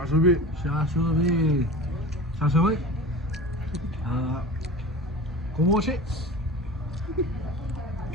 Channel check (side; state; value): both; normal; correlation 0.35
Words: Sashimi. Sashimi. Komochi.